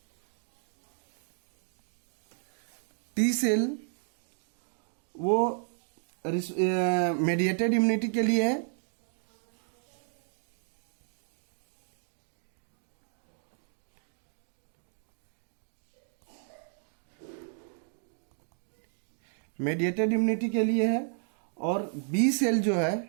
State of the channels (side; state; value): left; silent; digital silence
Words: टी सेल वो मेडिएटेड इम्यूनिटी के लिए है। मेडिएटेड इम्यूनिटी के लिए है। और बी सेल जो